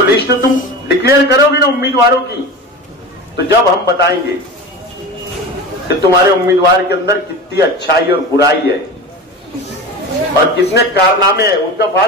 लिस्ट तुम डिक्लेयर करोगी ना उम्मीदवारों की, तो जब हम बताएंगे कि तुम्हारे उम्मीदवार के अंदर कितनी अच्छाई और बुराई है और कितने कारनामे हैं, उनका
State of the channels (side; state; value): both; normal; correlation 0.29